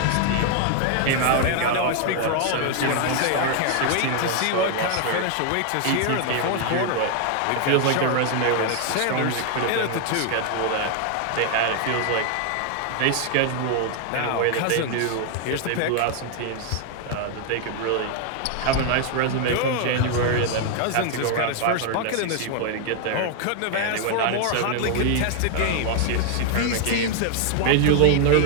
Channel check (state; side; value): different; both; correlation 0.00